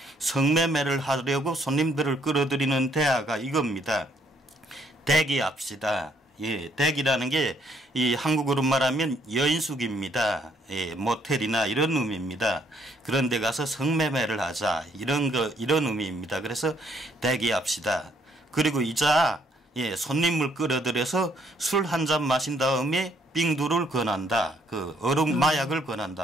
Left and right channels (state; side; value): normal; both; correlation 0.69